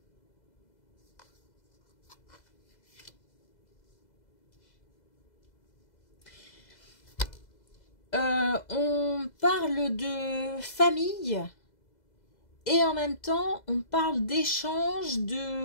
On parle de famille et en même temps on parle d'échange,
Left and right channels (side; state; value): right; late; 2.0 ms